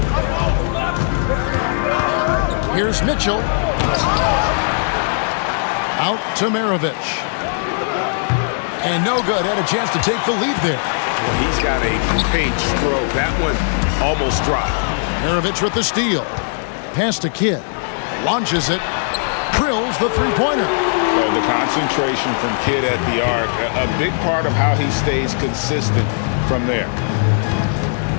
Here's Mitchell. Out to Maravich. And no good. Had a chance to take the lead there. Well, he's got a great stroke. That one almost dropped. Maravich with the steal. Pass to Kidd. Launches it. Drills the three-pointer. So the concentration from Kidd at the arc, a big part of how he stays consistent from there.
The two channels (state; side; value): silent; right; digital silence